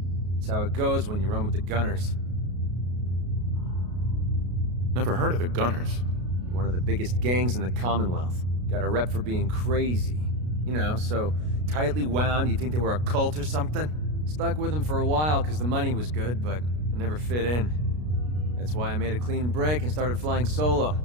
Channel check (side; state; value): left; late; 33 ms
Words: It's how it goes when you run with the Gunners. Never heard of the Gunners. One of the biggest gangs in the Commonwealth. Got a rep for being crazy. You know, so tightly wound you'd think they were a cult or something. Stuck with them for a while because the money was good, but I never fit in. That's why I made a clean break and started flying solo.